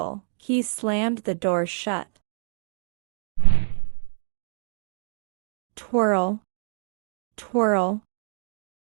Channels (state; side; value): silent; left; digital silence